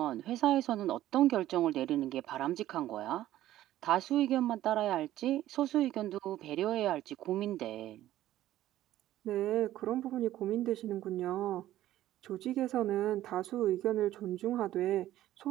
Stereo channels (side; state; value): left; quieter; 13.8 dB